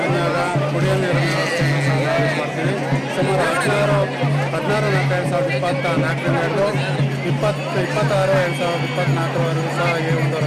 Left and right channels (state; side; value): identical; both; correlation 1.00